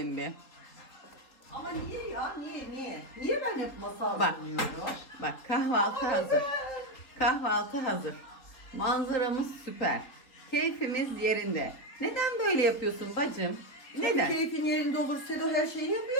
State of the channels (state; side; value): late; right; 3.5 ms